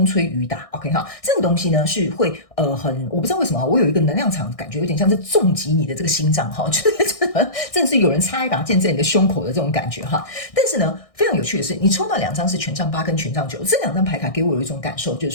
吹雨打。 OK 这个东西呢是会我不知道为什么我有一个能量场感觉有点像是重击你的这个心脏就是真的是有人插一把剑在你的胸口的这种感觉但是呢非常有趣的是，你抽到2张是权杖8跟权杖9，这2张牌卡给我有一种感受，就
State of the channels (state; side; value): late; right; 1.6 ms